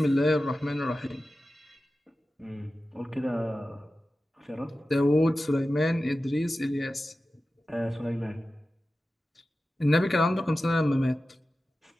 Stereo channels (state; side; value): normal; both; correlation 0.94